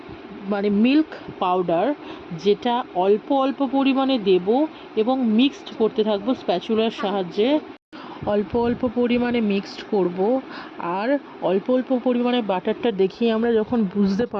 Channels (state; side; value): identical; both; correlation 1.00